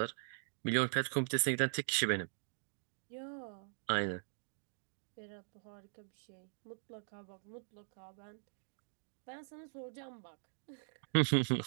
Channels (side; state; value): left; silent; digital silence